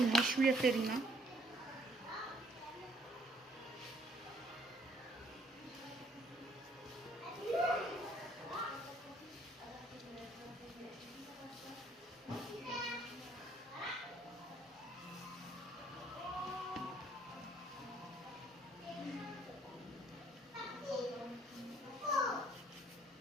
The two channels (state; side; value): normal; both; correlation 0.64